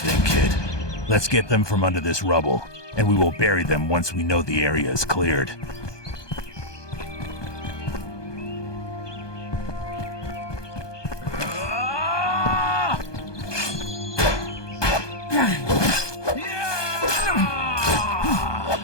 kid. Let's get them from under this rubble, and we will bury them once we know the area is cleared.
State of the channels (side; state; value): right; late; 1.2 ms